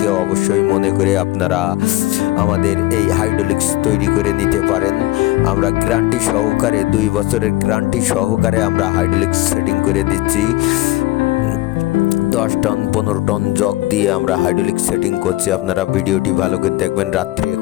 অবশ্যই মনে করে আপনারা আমাদের এই হাইড্রোলিক্স তৈরি করে নিতে পারেন। আমরা গ্যারান্টি সহকারে 2 বছরের গ্যারান্টি সহকারে আমরা হাইড্রোলিক্স সেটিং করে দিচ্ছি। 10 টন 15 টন জগ দিয়ে আমরা হাইড্রোলিক্স সেটিং করছি। আপনারা ভিডিওটি ভালো করে দেখবেন, রাত্রে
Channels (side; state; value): right; quieter; 18.0 dB